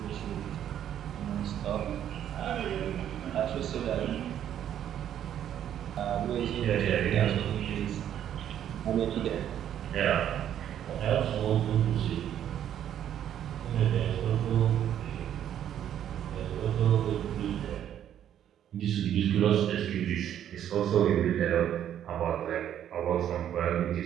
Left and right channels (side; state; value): left; quieter; 10.3 dB